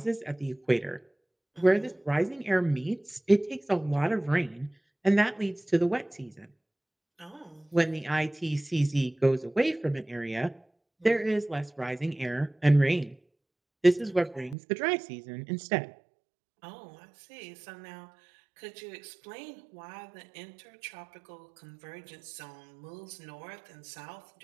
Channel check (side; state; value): left; drops out; at 14.6 s